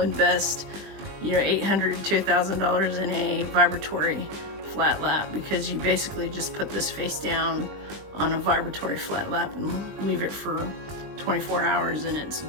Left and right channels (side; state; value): left; late; 20 ms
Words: $800 to $1,000 in a vibratory flat lap, because you basically just put this face down on a vibratory flat lap and leave it for 24 hours and it's